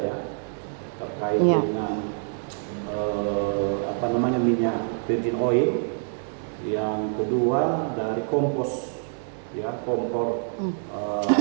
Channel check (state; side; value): silent; left; digital silence